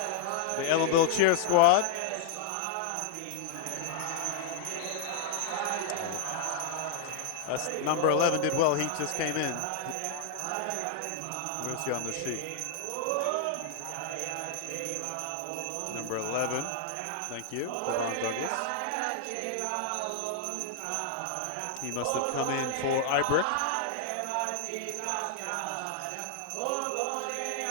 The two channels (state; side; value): different; both; correlation 0.00